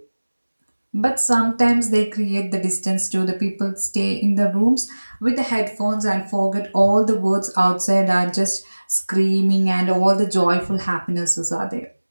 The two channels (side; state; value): both; inverted; correlation -1.00